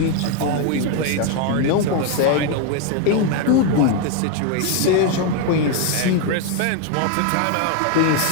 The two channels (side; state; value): both; different; correlation 0.01